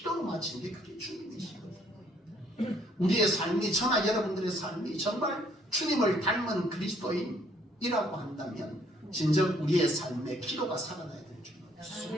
마친 게 그게 주님이시거든요. 우리의 삶이 저나 여러분들의 삶이 정말 주님을 닮은 그리스도인이라고 한다면 진정 우리의 삶에 기도가 살아나야 될 줄 알았습니다.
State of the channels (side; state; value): both; normal; correlation 0.65